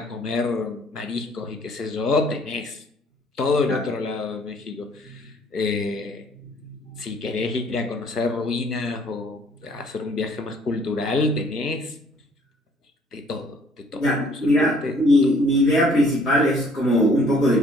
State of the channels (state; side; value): normal; both; correlation 0.59